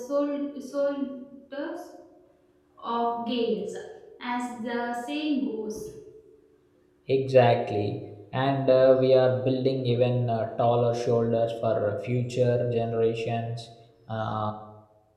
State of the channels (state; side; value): identical; both; correlation 1.00